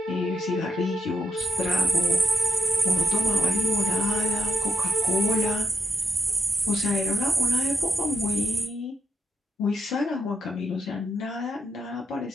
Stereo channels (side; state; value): both; normal; correlation 0.81